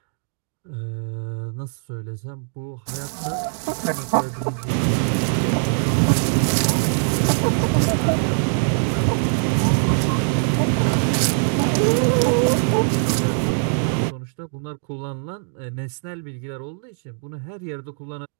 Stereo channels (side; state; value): left; silent; digital silence